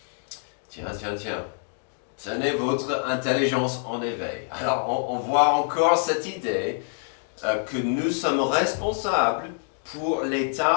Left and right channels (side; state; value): right; silent; digital silence